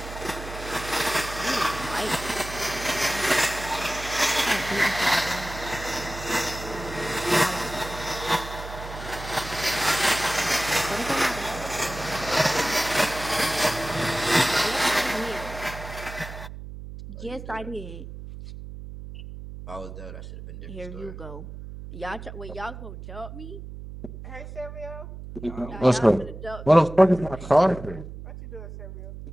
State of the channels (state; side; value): noise; right; hum, 11 dB below the sound